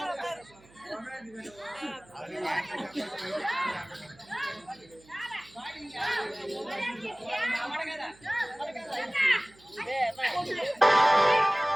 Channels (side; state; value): right; noise; hum, 27 dB below the sound